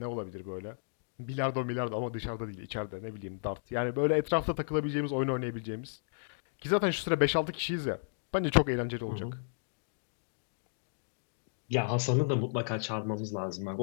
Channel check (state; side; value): silent; right; digital silence